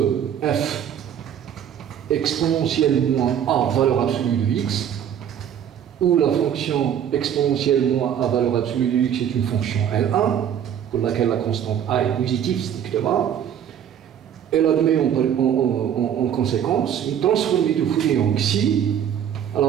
f exponentielle moins a valeur absolue de x, où la fonction exponentielle moins a valeur absolue de x est une fonction L1, pour laquelle la constante a est positive strictement. Elle admet en conséquence une transformée de Fourier en xi.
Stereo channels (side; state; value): left; quieter; 9.2 dB